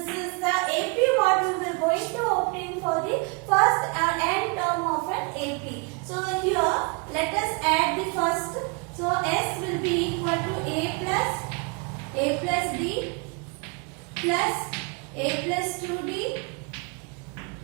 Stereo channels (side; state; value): left; quieter; 32.7 dB